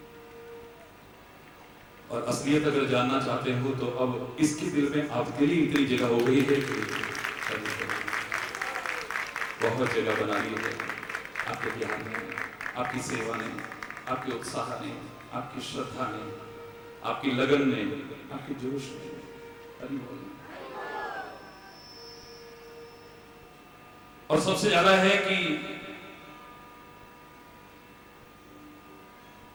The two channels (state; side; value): identical; both; correlation 1.00